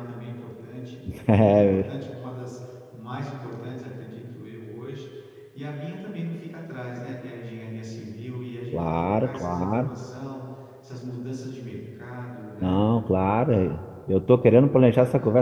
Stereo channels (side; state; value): both; identical; correlation 1.00